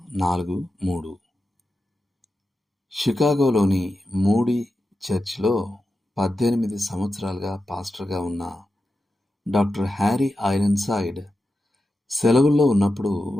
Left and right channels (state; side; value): normal; both; correlation 0.91